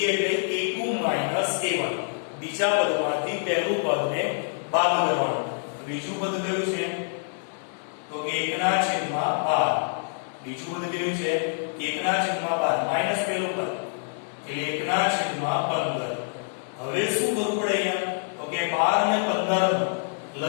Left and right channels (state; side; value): silent; right; digital silence